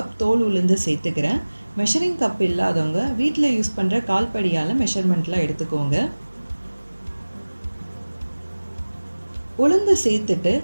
தோல் உளுந்து சேர்த்துக்கிறேன். மெஷரிங் கப் இல்லாதவங்க வீட்டில் யூஸ் பண்ணுற கால்படியால் மெஷர்மெண்ட்லாம் எடுத்துக்கோங்க. உளுந்து சேர்த்துட்டு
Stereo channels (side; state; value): both; inverted; correlation -1.00